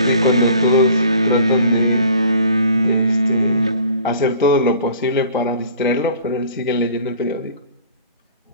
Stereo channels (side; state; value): both; inverted; correlation -0.49